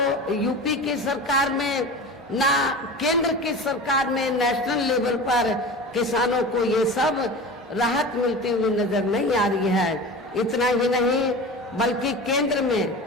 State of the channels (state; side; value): normal; both; correlation 0.33